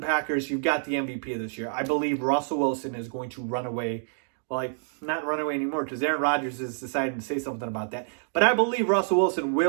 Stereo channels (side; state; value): left; silent; digital silence